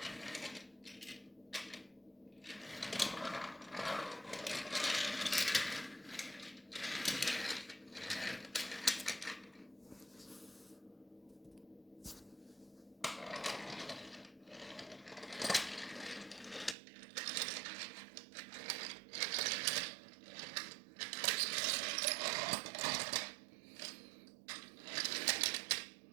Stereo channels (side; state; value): left; drops out; at 16.8 s